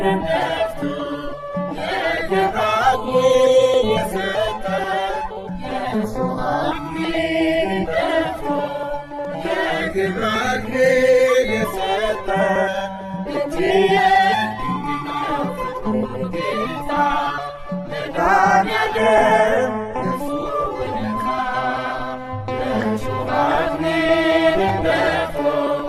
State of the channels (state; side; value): identical; both; correlation 1.00